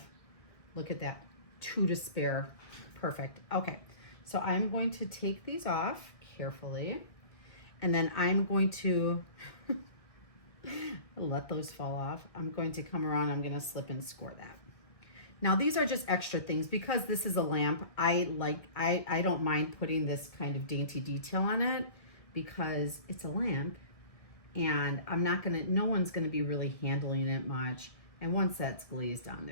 look at that, 2 to spare. Perfect. Okay, so I'm going to take these off carefully, and then I'm going to let those fall off. I'm going to come around, I'm going to slip and score that. Now these are just extra things because this is a lamp. I don't mind putting this kind of dainty detail on it because it's a lamp, and no one's gonna be really handling it much. And once that's glazed on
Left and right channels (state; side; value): late; right; 1.6 ms